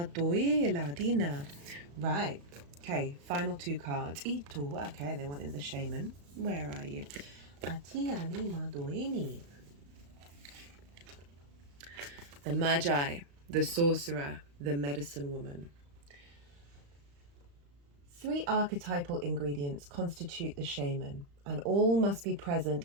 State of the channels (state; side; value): late; left; 35 ms